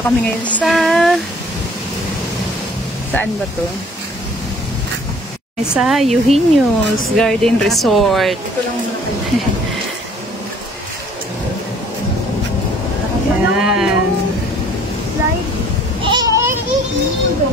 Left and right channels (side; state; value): both; normal; correlation 0.55